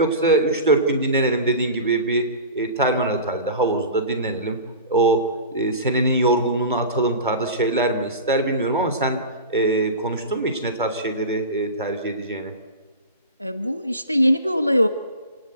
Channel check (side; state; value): both; inverted; correlation -0.32